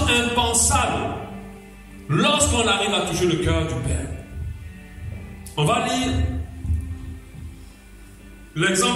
impensable. Lorsqu'on arrive à toucher le cœur du Père. On va lire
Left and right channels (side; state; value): both; identical; correlation 1.00